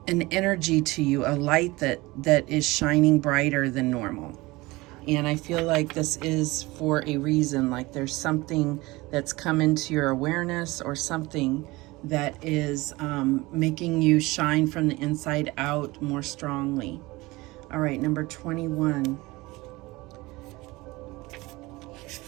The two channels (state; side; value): quieter; left; 21.4 dB